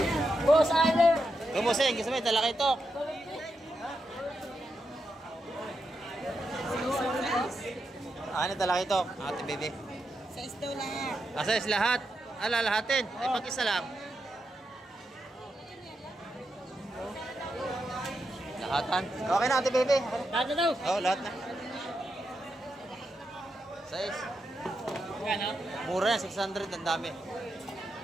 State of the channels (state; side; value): normal; both; correlation 0.85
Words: Boss Tyler. Kumusing, gusto mo yung talaki ito. Ano talaki ito? Ate baby. Sa isto lahat. Asa is lahat? Ala, lahatin. Ay, pag-isa lang. Lahatan. Okay na, ate baby. Lahat na daw. Oo, lahat na. Size. Mura yan, 600. Ang dami.